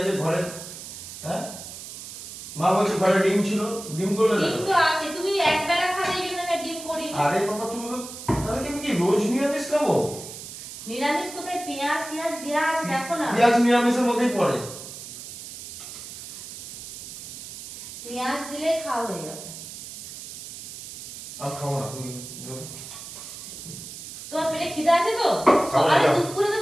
ঘরে? হ্যাঁ মা বলছে ঘরে ডিম ছিল, ডিম করলে ডিম তো আছে, তুমি এক বেলা খাবে এই জন্য আমি ডিম করি। আরে বাবা তুমি তো তাহলে কি আমি কি রোজ নিরামিষ খাবো? নিরামিষ কোথায় পেঁয়াজ টিয়াজ দেয়া আছে দেখো না। পেঁয়াজ নিরামিষের মধ্যেই পড়ে। পেঁয়াজ দিলে খাওয়া হয়ে যাবে। আর খাবো না তুমি। তোমার পেটে খিদে আছে তো? আরে দুপুরে তো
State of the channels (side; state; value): right; noise; hiss, 12 dB below the sound